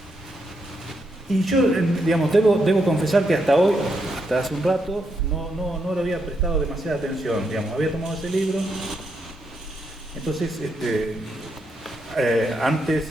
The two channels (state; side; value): normal; both; correlation 0.80